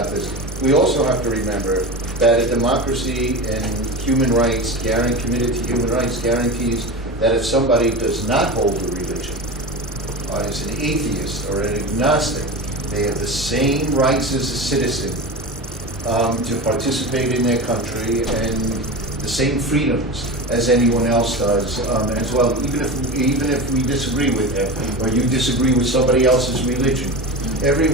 this, we also have to remember that a democracy and human rights, committed to human rights, guarantees that if somebody does not hold a religion, as an atheist or an agnostic, they have the same rights as a citizen to participate in their country and the same freedoms as anyone else does as well, even if we disagree with them or you disagree with somebody else's religion.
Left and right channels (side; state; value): both; normal; correlation 0.26